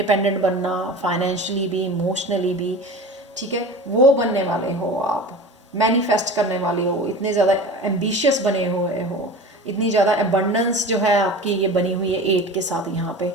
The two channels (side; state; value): both; normal; correlation 0.34